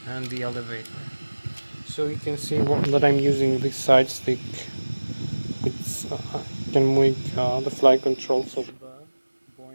and the elevator. So you can see that I'm using this side stick, which can make the flight controls of the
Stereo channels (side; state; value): both; inverted; correlation -1.00